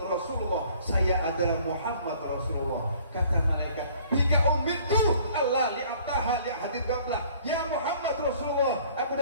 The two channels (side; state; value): both; inverted; correlation -0.56